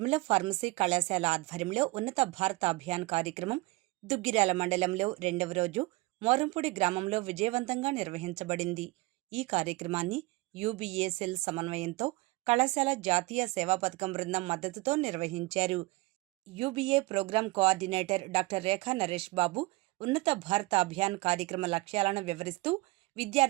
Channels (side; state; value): left; quieter; 22.2 dB